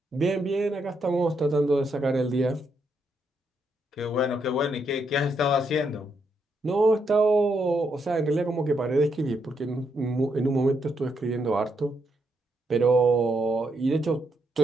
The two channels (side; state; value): both; normal; correlation 0.78